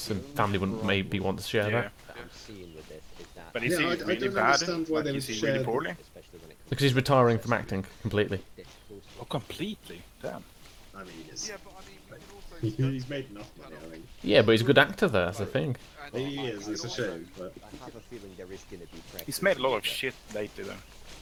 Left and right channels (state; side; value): identical; both; correlation 1.00